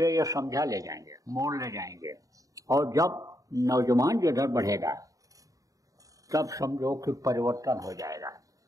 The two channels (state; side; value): late; left; 0.16 ms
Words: ये समझा ले जाएंगे, मोड़ ले जाएंगे। और जब नौजवान जिधर बढ़ेगा तब समझो कि परिवर्तन हो जाएगा।